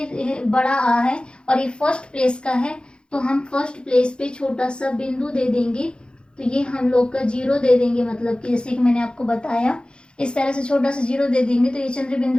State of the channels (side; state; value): right; late; 0.052 ms